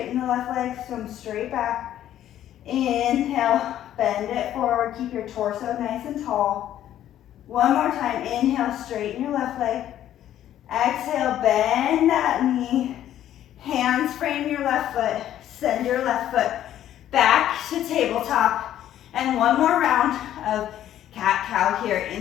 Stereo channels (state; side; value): quieter; right; 11.7 dB